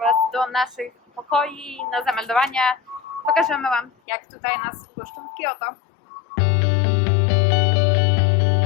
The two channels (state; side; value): drops out; right; at 3.9 s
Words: do naszych pokoi na zameldowania. Pokażemy Wam, jak tutaj nas wpuszczą w Kyoto.